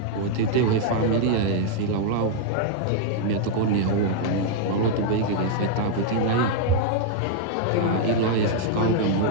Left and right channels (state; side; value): different; both; correlation -0.01